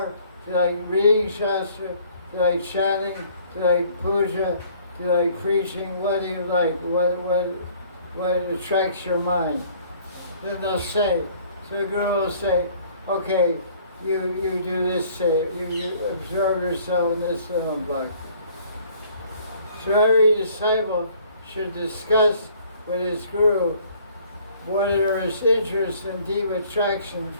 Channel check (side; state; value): both; inverted; correlation -0.57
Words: Do you like reading Shastra? Do you like chanting? Do you like puja? Do you like preaching? What do you like? What attracts your mind? Then they'll say, so the Guru will say, okay, you do this, say, you absorb yourself in this little bhakti. So every disciple should discuss with his Guru what are his interests and deep attraction